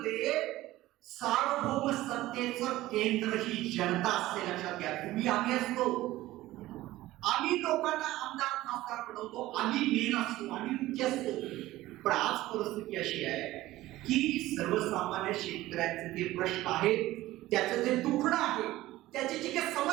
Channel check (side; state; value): left; quieter; 16.6 dB